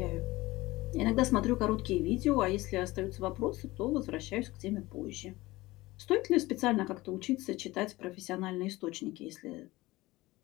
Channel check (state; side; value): quieter; right; 19.6 dB